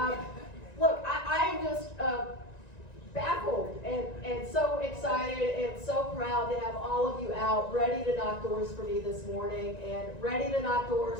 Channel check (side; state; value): right; late; 1.9 ms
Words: Look, I am just baffled and so excited and so proud to have all of you out ready to knock doors for me this morning and ready to knock